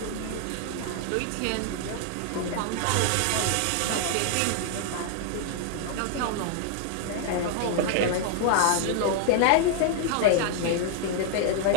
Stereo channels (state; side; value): different; both; correlation 0.00